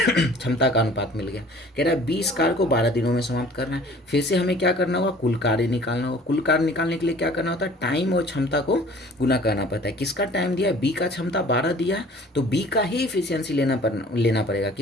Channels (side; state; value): both; normal; correlation 0.50